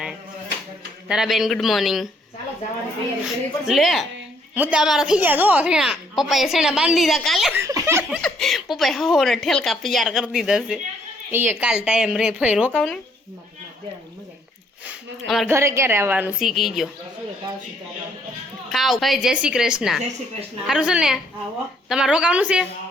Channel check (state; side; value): normal; both; correlation 0.67